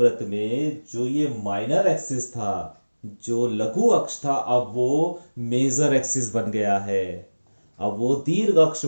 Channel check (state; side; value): inverted; both; correlation -1.00